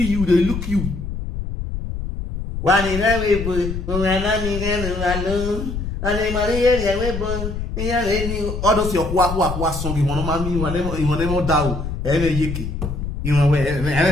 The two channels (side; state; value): left; noise; rumble, 5 dB below the sound